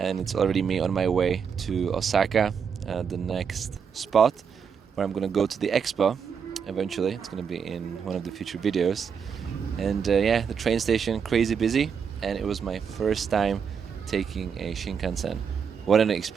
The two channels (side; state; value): left; quieter; 6.7 dB